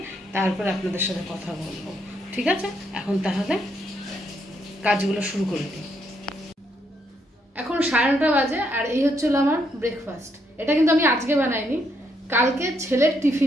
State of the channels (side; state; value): both; normal; correlation 0.75